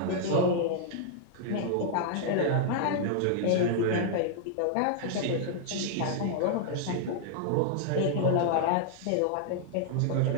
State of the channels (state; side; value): different; both; correlation -0.01